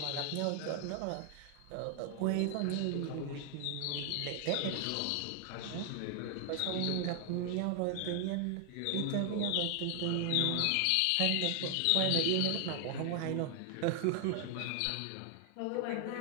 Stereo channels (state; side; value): different; both; correlation 0.00